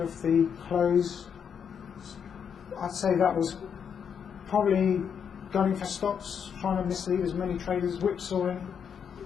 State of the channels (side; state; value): right; quieter; 7.4 dB